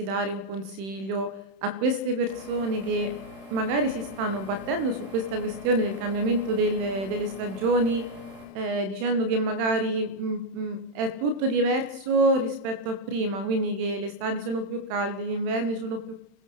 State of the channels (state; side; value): late; left; 31 ms